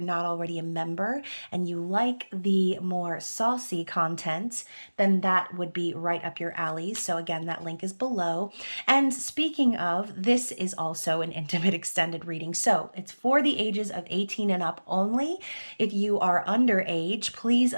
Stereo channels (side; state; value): both; inverted; correlation -1.00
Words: not already a member and you like the more saucy content, then that would be right up your alley. So again, that link is below. And speaking of, this is also an intimate extended reading. So it's for the ages of 18 and up only. If you are underage, please